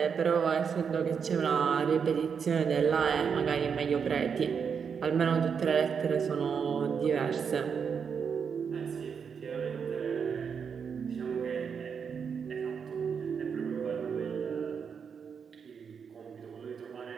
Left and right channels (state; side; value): quieter; left; 6.6 dB